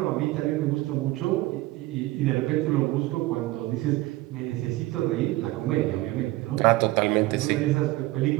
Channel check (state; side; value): quieter; left; 18.8 dB